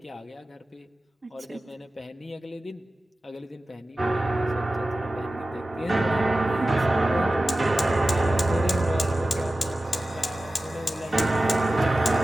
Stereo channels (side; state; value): both; normal; correlation 0.95